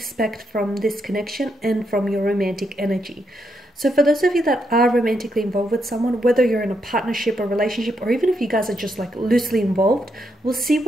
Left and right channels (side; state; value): both; normal; correlation 0.80